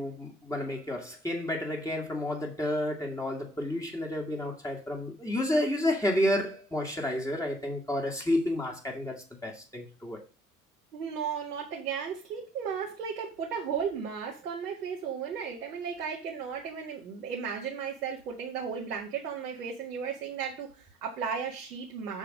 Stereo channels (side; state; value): both; normal; correlation 0.59